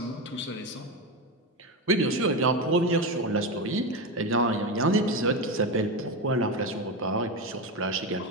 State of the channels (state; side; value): normal; both; correlation 0.16